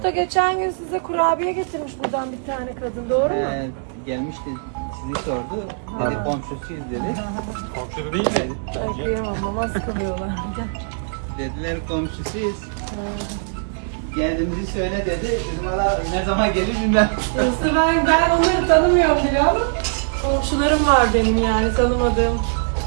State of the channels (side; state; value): left; silent; 64 dB below the other